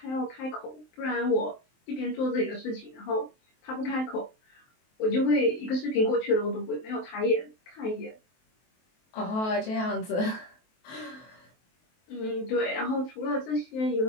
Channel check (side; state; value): right; late; 23 ms